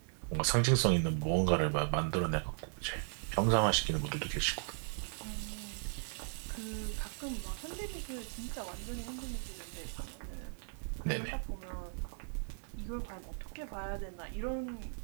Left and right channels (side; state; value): left; silent; 53 dB below the other